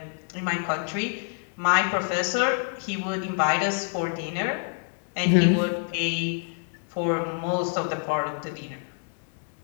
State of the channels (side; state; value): right; silent; 57 dB below the other